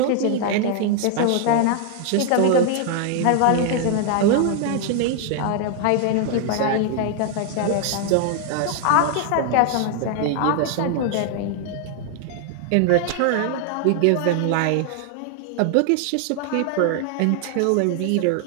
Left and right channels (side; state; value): both; different; correlation 0.00